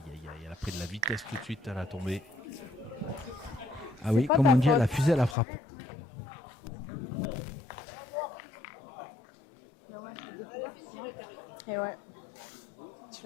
aïe, aïe. Elle a pris de la vitesse tout de suite à la tombée. Ah oui, pas comme ta on dit, faute. elle a fusé à la frappe. Allez, fais tirer, Karine. Et ouais. Tu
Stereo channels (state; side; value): drops out; right; at 5.4 s